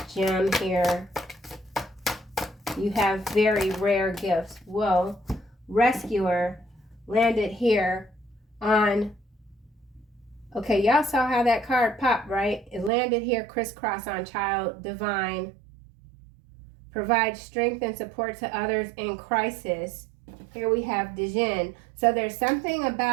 gem here? You have very rare gifts. Whoa. Rescuer landed here on... Okay, y'all saw how that card popped, right? It landed here crisscross on child divine. Provide strength and support to others in crisis. Here we have Dijin. So there's something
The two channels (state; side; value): drops out; left; at 12.9 s